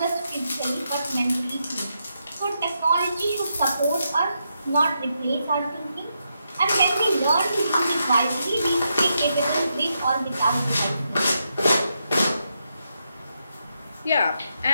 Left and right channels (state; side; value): inverted; both; correlation -0.82